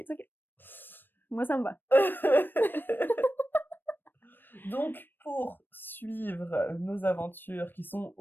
okay. Moi, ça me va. Donc, pour suivre nos aventures qui sont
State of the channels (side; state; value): right; late; 0.094 ms